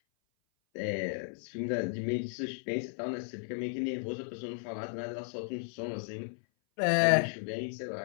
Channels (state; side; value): silent; right; 55 dB below the other